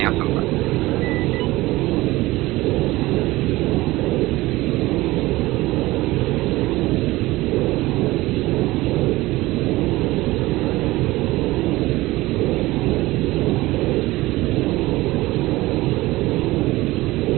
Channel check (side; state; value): left; quieter; 18.9 dB